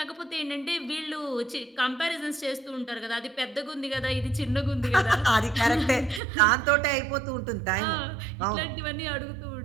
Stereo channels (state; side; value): drops out; left; at 6.2 s